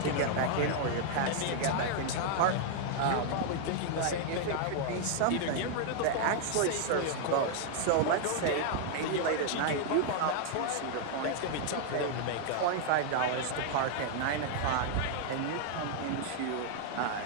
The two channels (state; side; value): different; both; correlation 0.00